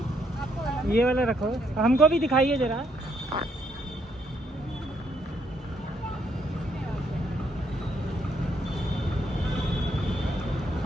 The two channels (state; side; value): normal; both; correlation 0.73